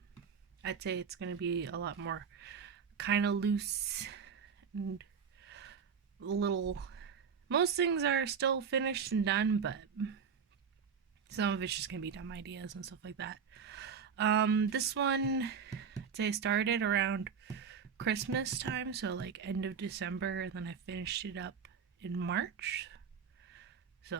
I'd say it's going to be a lot more kind of loose and a little. Most things are still finished and done, but some of it's just going to be dumb ideas and stuff like that. This one, I'd say I started around Christmas time, so like end of December, and then I finished it up in March. So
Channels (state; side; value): quieter; left; 6.6 dB